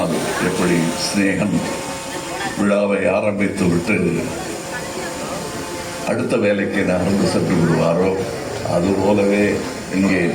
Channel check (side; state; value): both; identical; correlation 1.00